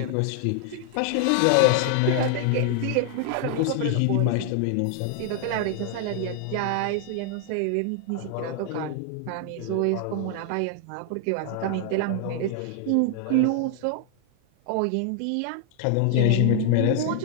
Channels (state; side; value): different; both; correlation 0.00